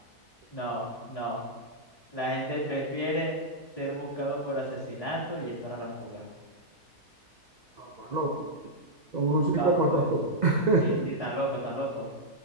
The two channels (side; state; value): both; normal; correlation -0.06